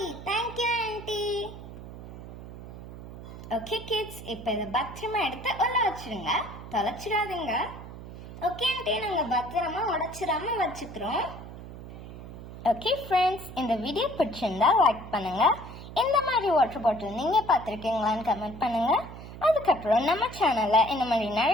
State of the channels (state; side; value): noise; right; hum, 13 dB below the sound